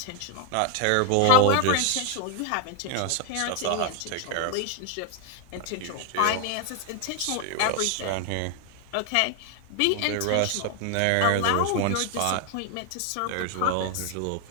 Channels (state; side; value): different; both; correlation 0.00